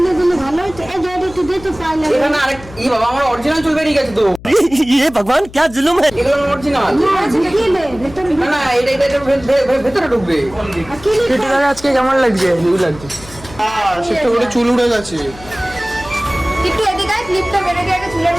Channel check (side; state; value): left; noise; hum, 18 dB below the sound